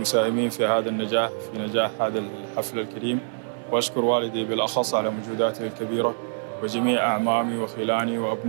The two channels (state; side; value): silent; left; 61 dB below the other